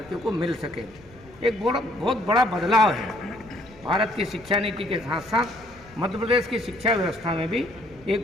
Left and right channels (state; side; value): noise; left; rumble, 24 dB below the sound